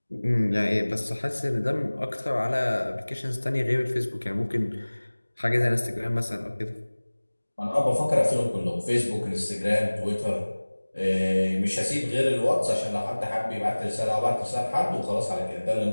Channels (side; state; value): both; inverted; correlation -1.00